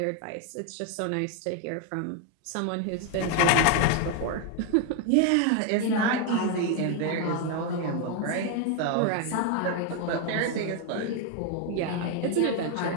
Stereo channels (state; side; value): different; both; correlation 0.01